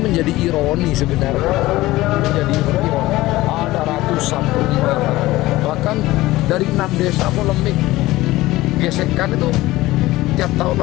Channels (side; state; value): right; quieter; 17.9 dB